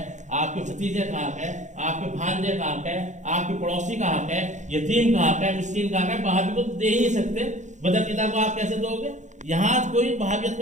آپ کے بھتیجے کا حق ہے، آپ کے بھانجے کا حق ہے، آپ کے پڑوسی کا حق ہے، یتیم کا حق ہے، مسکین کا حق ہے. وہابی کو دے ہی نہیں سکتے، بدعقیدہ کو آپ کیسے دو گے؟ یہاں کوئی وہابیت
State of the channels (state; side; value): late; left; 0.35 ms